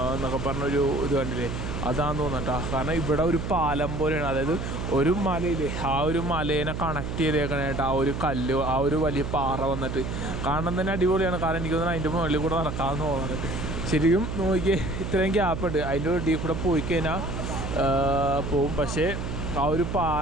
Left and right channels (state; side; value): noise; right; hum, 5 dB below the sound